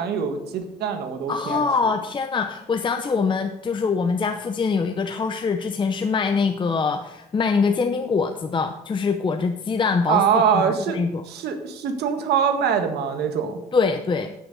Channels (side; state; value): both; normal; correlation 0.42